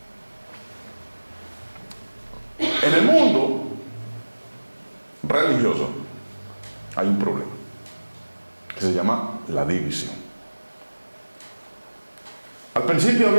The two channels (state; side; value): inverted; both; correlation -1.00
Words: En el mundo religioso hay un problema que se llama la división. Al principio